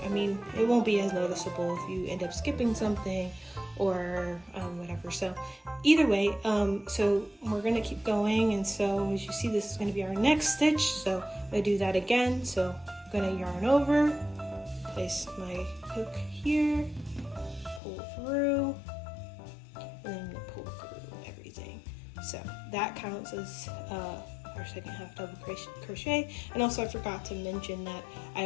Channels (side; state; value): right; drops out; at 17.8 s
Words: mean, it won't be as noticeable if you end up skipping something or whatever. So either way, so we're gonna keep going, and so as you see, this is gonna be our next stitch. So I'm gonna do that again. So I'm gonna yarn over, place my hook here, pull through, and then I'm gonna pull through everything. So that counts as our second half double crochet. And also I forgot to mention that I